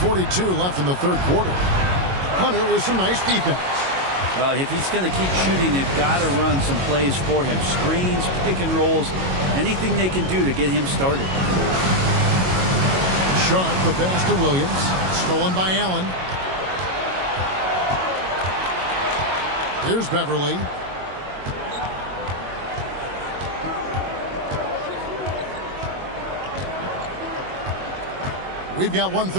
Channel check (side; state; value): left; late; 22 ms